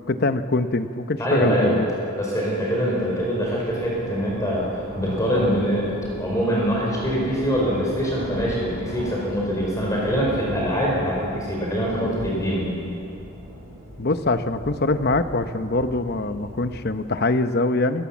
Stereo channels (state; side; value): normal; both; correlation 0.37